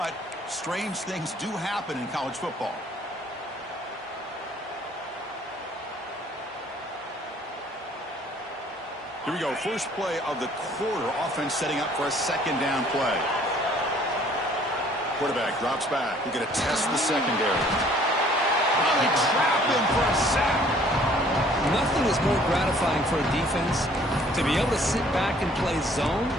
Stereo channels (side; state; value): both; normal; correlation 0.57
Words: strange things do happen in college football. Here we go. First play of the quarter. Offense setting up for a second down play. Quarterback drops back. We're going to test the secondary. Oh, they trap him for a sack. Nothing is more gratifying for a defense to be able to sit back and play zone